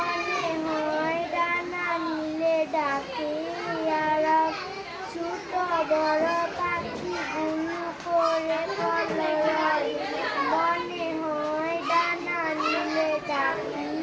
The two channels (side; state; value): both; identical; correlation 1.00